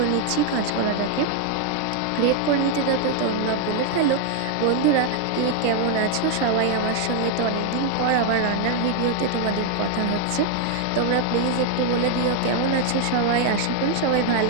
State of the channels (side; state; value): both; different; correlation 0.00